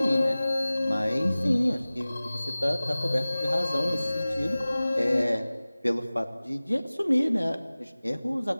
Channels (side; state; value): both; inverted; correlation -0.98